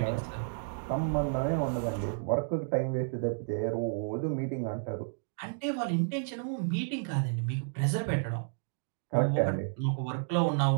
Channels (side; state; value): left; silent; digital silence